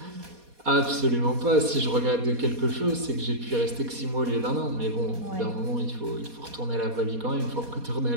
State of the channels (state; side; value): late; left; 4.2 ms